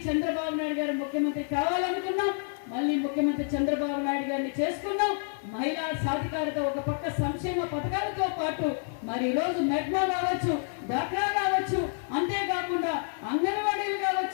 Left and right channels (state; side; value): silent; right; 59 dB below the other